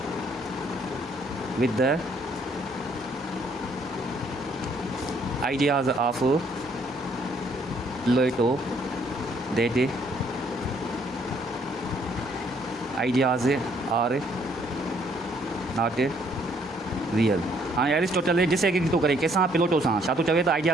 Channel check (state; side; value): normal; both; correlation 0.66